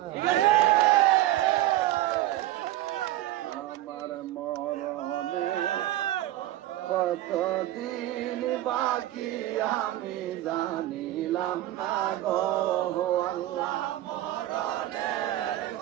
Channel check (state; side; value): quieter; left; 14.6 dB